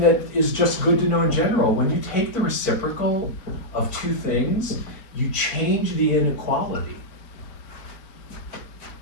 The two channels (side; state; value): right; late; 4.4 ms